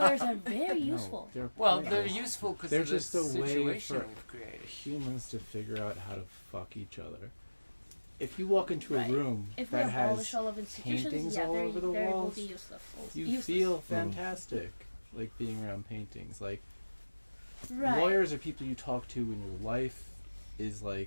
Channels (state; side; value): inverted; both; correlation -1.00